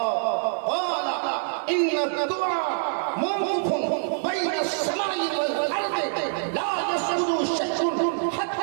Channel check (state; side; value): silent; left; 60 dB below the other